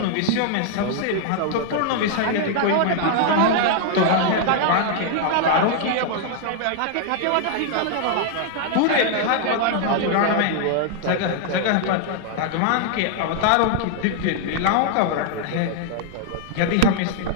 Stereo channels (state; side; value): different; both; correlation 0.00